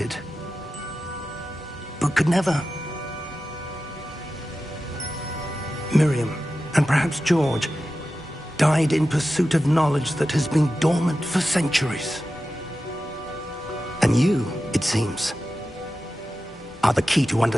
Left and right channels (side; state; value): both; normal; correlation 0.93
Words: but could never. Miriam, and perhaps George, died in pursuit of knowledge that has been dormant for centuries. And you, it seems, are the key to